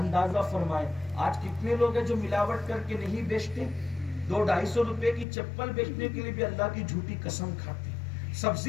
فرمائے آج کتنے لوگ ہیں جو ملاوٹ کر کے نہیں بیچتے، 200-250 روپے کی چپل بیچنے کے لیے بھی اللہ کی جھوٹی قسم کھاتے ہیں،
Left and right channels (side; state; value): right; drops out; at 5.2 s